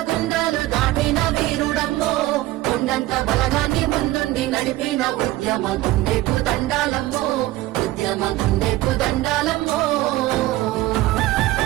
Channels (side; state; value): left; quieter; 17.0 dB